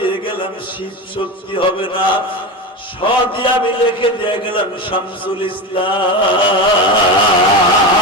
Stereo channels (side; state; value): both; normal; correlation 0.21